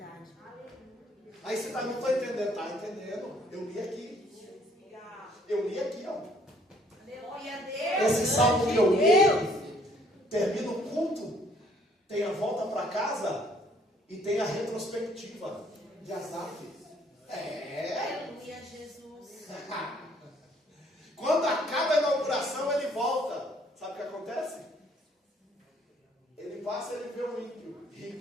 Aí você não está entendendo. Está entendendo? Eu li aqui. Eu li aqui, ó. Esse salmo que eu li, termina o culto, tem a volta para casa e tem a retrospectiva de Asaf. Aleluia, Jesus. Quando acaba a inauguração, ele volta. Sabe o que acontece? Ele passa e ele vê o ímpio,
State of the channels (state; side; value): normal; both; correlation 0.63